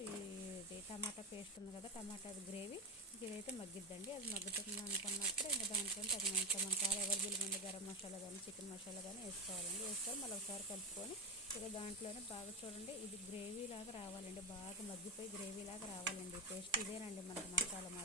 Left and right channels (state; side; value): normal; both; correlation 0.13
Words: ఇది టమాటా పేస్ట్ ఉంది కదా, టమాటా గ్రేవీ ఇదైతే మగ్గిద్దండి. అది మగ్గుతుంది అనుకున్నప్పుడు ఇంకా దాంట్లో తగినంత మన కావాలి అవైలబుల్గా ఉండే గరం మసాలా కానీ చికెన్ మసాలా కానీ వేసుకోవాలండి. వేసుకొని మళ్ళీ ఒకసారి కలుపుకొని ఇక దాంట్లోనే బాగా చూడండి ఇది గ్రేవీ లాగా రావాలండి, బాగా మగ్గిపోయి గ్రేవీ లాగా రావాలండి పేస్ట్. ఇదేనండి మనకి మసాలా